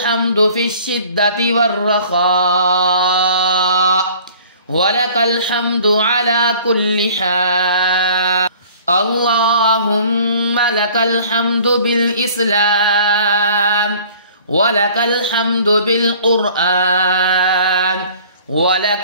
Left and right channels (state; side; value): inverted; both; correlation -0.50